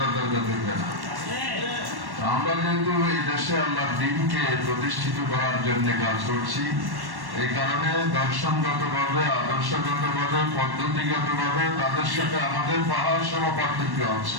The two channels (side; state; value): left; late; 1.1 ms